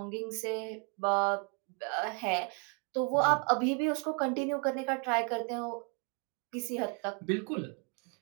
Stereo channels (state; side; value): quieter; left; 34.1 dB